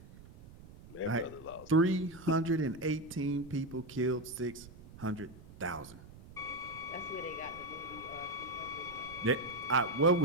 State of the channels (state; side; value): noise; right; rumble, 18 dB below the sound